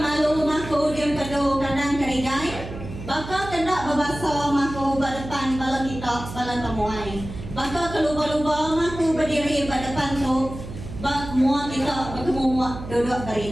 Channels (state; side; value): noise; right; hum, 11 dB below the sound